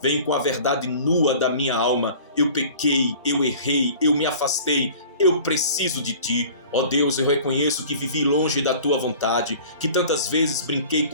venho com a verdade nua da minha alma. Eu pequei, eu errei, eu me afastei, eu preciso de ti. Ó Deus, eu reconheço que vivi longe da tua vontade, que tantas vezes brinquei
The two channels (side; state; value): both; inverted; correlation -0.45